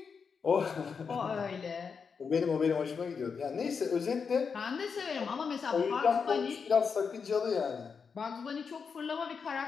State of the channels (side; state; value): right; quieter; 5.8 dB